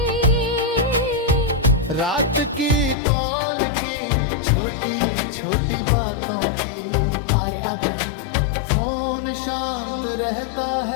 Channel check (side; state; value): right; drops out; at 3.0 s